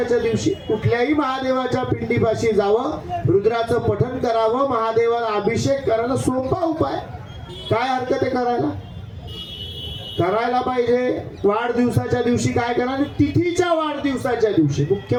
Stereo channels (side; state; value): both; identical; correlation 1.00